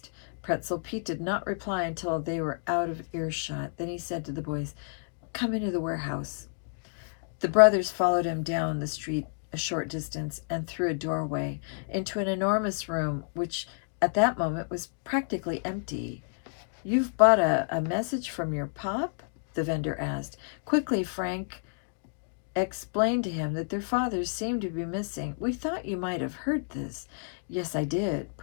Pretzel Pete did not reply until they were out of earshot. Then he said to the boys, come into the warehouse. The brothers followed him down the street a short distance and through a doorway into an enormous room which at that moment was practically empty. You've bought a message from your pop? The vendor asked. Quickly, Frank explained to him that their fathers seemed to be missing. We thought you might have heard this. Yes, I did,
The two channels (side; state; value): right; silent; digital silence